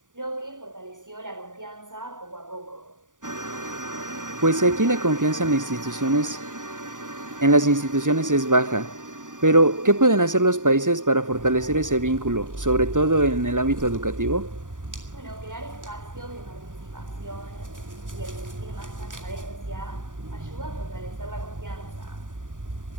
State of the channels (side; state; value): left; late; 0.88 ms